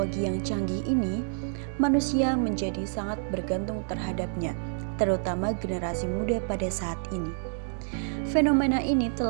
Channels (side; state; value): left; silent; digital silence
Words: yang canggih ini, manusia menjadi sangat bergantung terhadapnya, terutama generasi muda pada saat ini. Fenomena ini